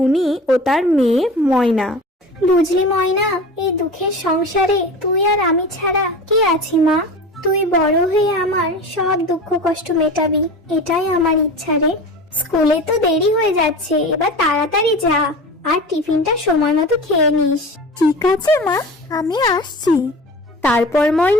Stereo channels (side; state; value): both; normal; correlation 0.34